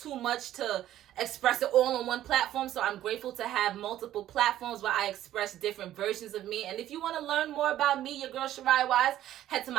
much to express it all on one platform. So I'm grateful to have multiple platforms where I express different versions of me. And if you want to learn more about me, your girl Shariah Wise, head to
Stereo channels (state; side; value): quieter; left; 12.8 dB